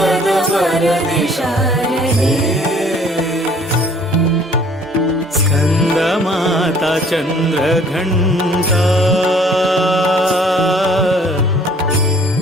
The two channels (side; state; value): both; normal; correlation 0.57